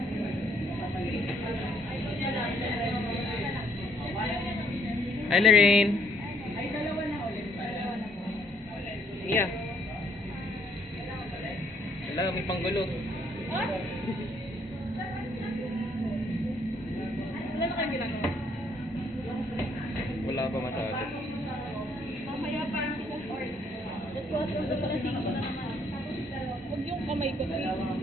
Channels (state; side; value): normal; both; correlation 0.67